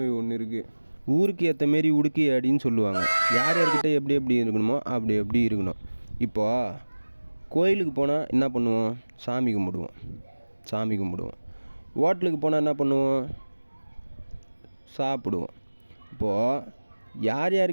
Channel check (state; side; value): inverted; both; correlation -1.00